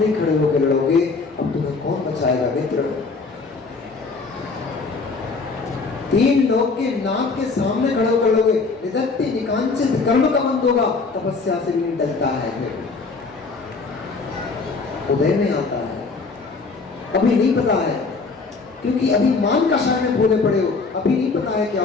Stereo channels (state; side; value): quieter; right; 4.2 dB